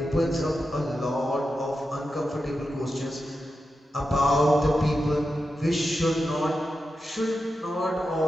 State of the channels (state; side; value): normal; both; correlation 0.89